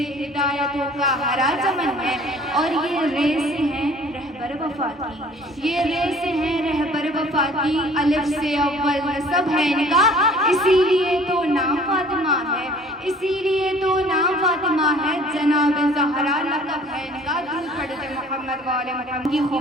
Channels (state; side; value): normal; both; correlation 0.52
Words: हिदायतों का हरा चमन है, और ये रे से है रहबर वफा की, ये रे से है रहबर वफा की, अलिफ से अव्वल नसब है इनका, इसीलिए तो नाम फातिमा है, इसीलिए तो नाम फातिमा है, जनाब ज़हरा लक़ब है इनका। दूर पढ़ते मोहम्मद वाले मोहम्मद की